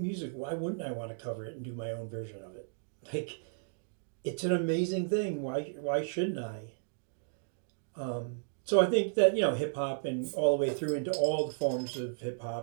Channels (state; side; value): silent; left; digital silence